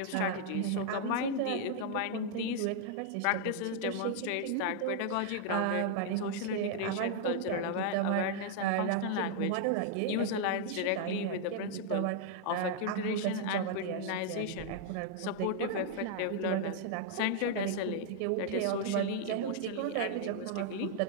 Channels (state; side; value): different; both; correlation 0.00